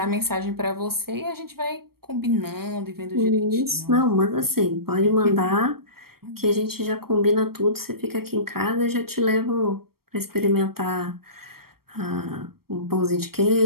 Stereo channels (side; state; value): left; late; 0.94 ms